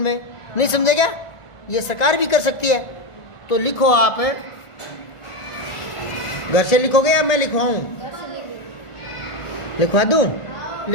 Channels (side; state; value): right; late; 1.5 ms